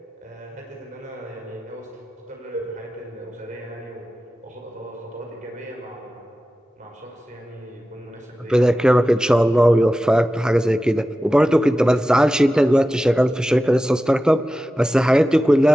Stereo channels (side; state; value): both; normal; correlation 0.94